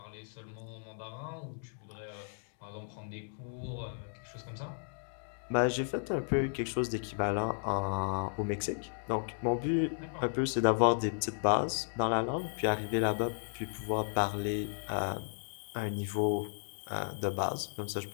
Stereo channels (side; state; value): right; silent; digital silence